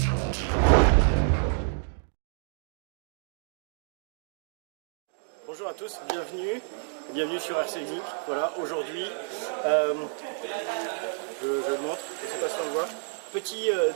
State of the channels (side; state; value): left; silent; 59 dB below the other